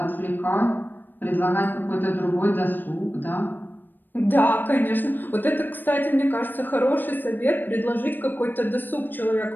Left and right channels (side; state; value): right; late; 0.092 ms